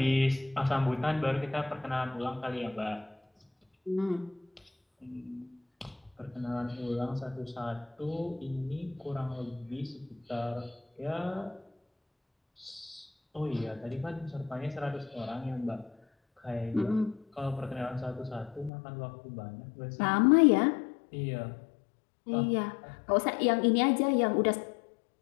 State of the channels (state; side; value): drops out; right; at 18.7 s